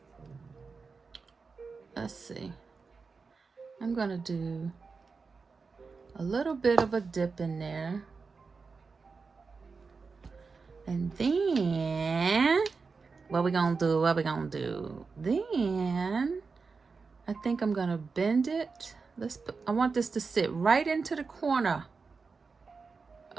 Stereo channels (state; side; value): quieter; left; 4.7 dB